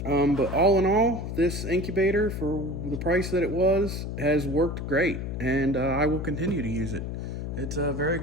But all in all, this incubator, for the price that it was, has worked great, and I will continue to use it. It's a very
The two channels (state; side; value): noise; left; hum, 5 dB below the sound